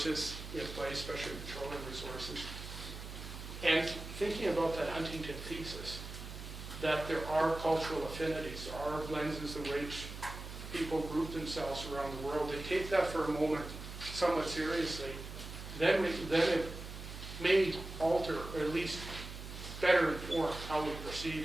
in place, especially petroleum resources, and thinking about that Huntington thesis, that there are cultural affinities, there are lenses in which people group themselves around the world, and take that for a moment somewhat seriously, then it may alter, or at least better inform how we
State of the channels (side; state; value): right; noise; hum, 10 dB below the sound